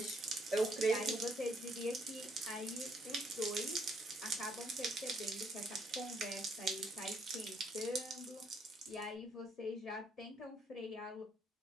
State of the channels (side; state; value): both; normal; correlation 0.71